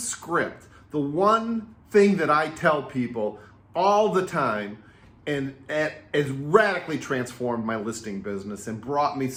the one thing that I tell people all the time, and has radically transformed my listing business and brought me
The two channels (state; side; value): identical; both; correlation 1.00